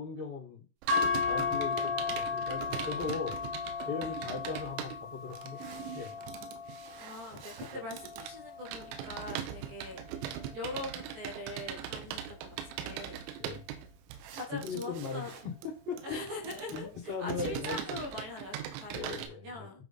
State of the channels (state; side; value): late; left; 22 ms